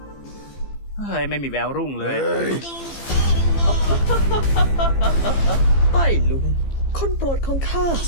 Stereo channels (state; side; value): late; right; 15 ms